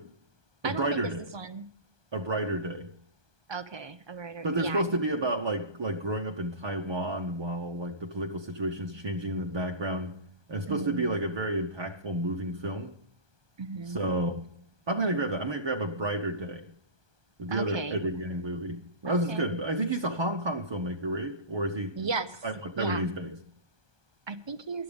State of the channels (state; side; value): late; left; 1.2 ms